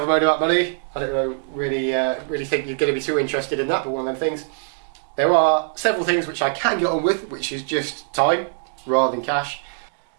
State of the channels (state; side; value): silent; left; digital silence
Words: a moan about money. I don't know, really think you're going to be too interested in that, but one of them things. There are several things which I can get on with, which is just time rather than cash.